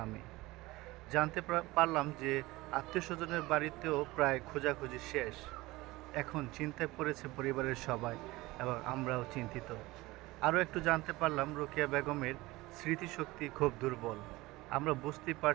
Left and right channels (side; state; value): left; quieter; 20.2 dB